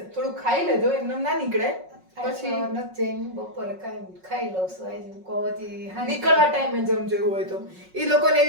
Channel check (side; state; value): left; late; 5.4 ms